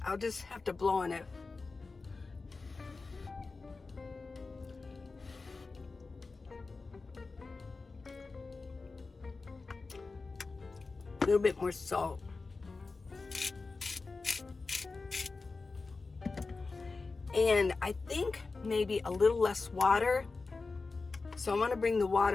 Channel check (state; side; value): quieter; right; 4.0 dB